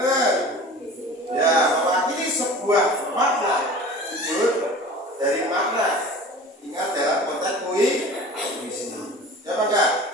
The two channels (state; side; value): normal; both; correlation 0.40